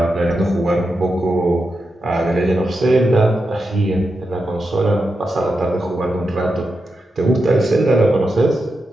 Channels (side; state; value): both; normal; correlation 0.88